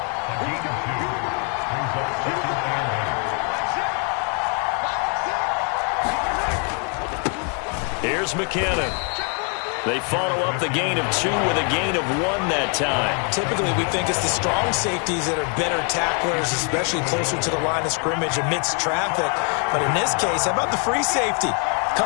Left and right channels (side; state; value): right; quieter; 39.6 dB